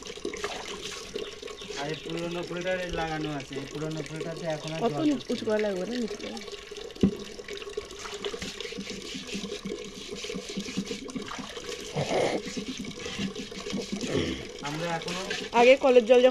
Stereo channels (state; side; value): identical; both; correlation 1.00